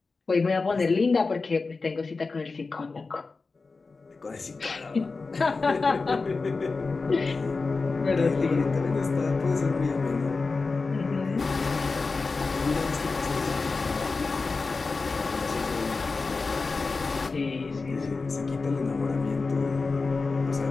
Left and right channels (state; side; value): quieter; right; 4.1 dB